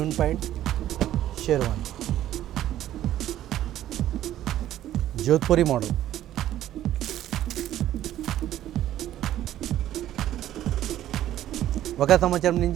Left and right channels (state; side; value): quieter; left; 12.7 dB